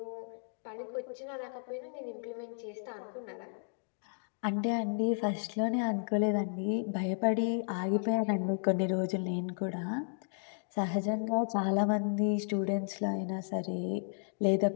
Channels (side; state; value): right; silent; digital silence